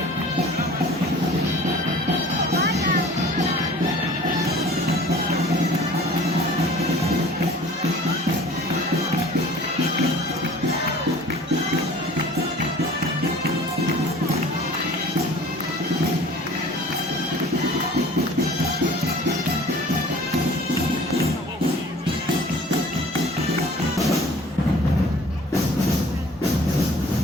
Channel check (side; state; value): both; normal; correlation 0.47